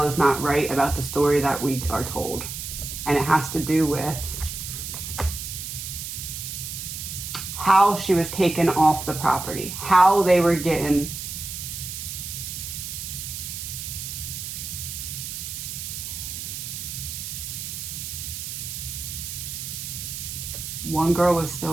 is not right about the story that we are told. And it has to do with how she was taken off the property, how they were getting. One girl was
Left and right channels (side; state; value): right; noise; hiss, 7 dB below the sound